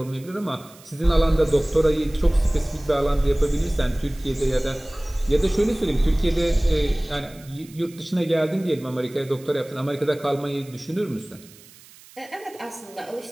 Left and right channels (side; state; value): right; noise; hiss, 23 dB below the sound